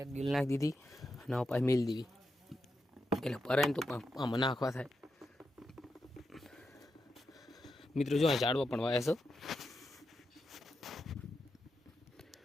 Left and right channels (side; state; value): both; normal; correlation 0.87